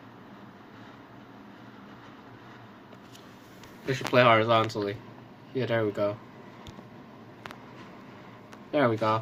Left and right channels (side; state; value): both; identical; correlation 1.00